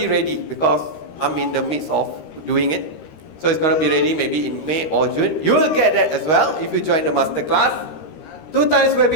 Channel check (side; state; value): right; late; 13 ms